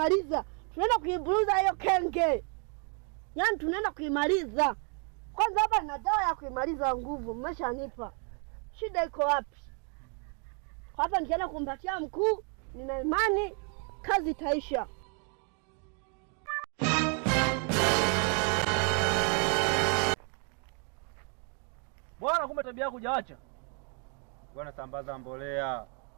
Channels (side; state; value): left; quieter; 39.4 dB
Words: Tunaenda kuiburuza hiyo kenge. Yaani tunaenda kuimaliza. Kwanza hapa nina dawa ya kuimaliza nguvu, mmeshanipa. Shida iko wapi? Kwa hapa nikienda kumpatia mkuu, nina imani kazi itaisha. Bwana, kumbe tabia yako hujaacha. Bwana, sambaza mbolea.